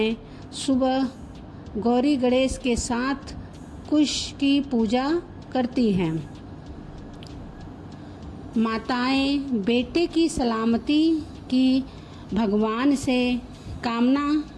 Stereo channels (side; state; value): both; identical; correlation 1.00